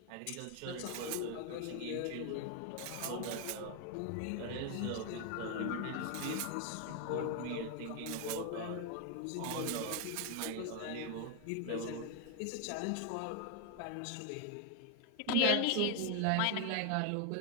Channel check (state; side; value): different; both; correlation 0.01